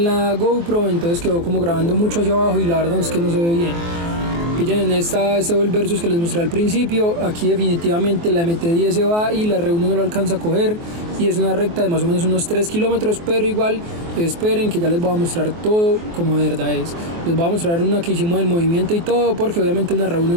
la GoPro, entonces quedó como grabando mucho hacia abajo y la verdad es que no se ve bien. Pillen en este Vol Versus que les mostré al principio. Aquí definitivamente la MT-10 se va y la R1 no lo alcanza a coger, y es una recta de más o menos unos 3 kilómetros, pero igual esperen que ya les voy a mostrar todo como de verdad es. Les voy a mostrar una que hicimos del movimiento y todo, porque obviamente una R1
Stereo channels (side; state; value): left; late; 24 ms